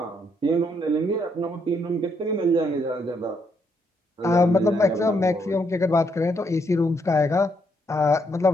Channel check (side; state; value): both; normal; correlation 0.75